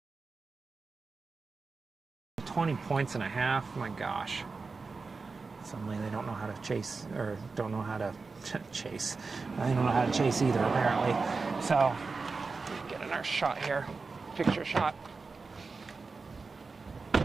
points and a half. My gosh. Suddenly they don't know how to chase, or don't know how to chase. They don't know how to chase either, apparently. So, get another shot here. Picture shot.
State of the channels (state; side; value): quieter; left; 4.3 dB